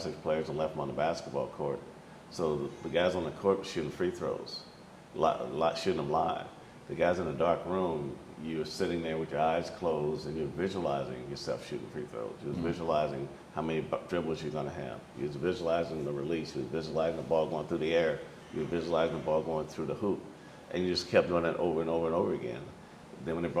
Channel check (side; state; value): both; identical; correlation 1.00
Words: players and left them on the basketball court. So the guys on the court were shooting free throws, shooting them live. The guys in the dark room, you're sitting there with your eyes closed and you're visualizing yourself shooting free throws. You're visualizing how many dribbles you're going to have. You're visualizing the release. You're visualizing the ball going through the air. You're visualizing the ball going through the hoop. And you just kept doing that over and over and over again. Then when they